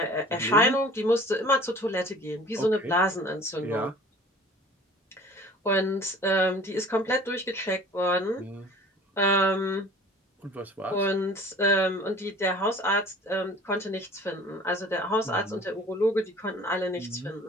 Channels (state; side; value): normal; both; correlation 0.46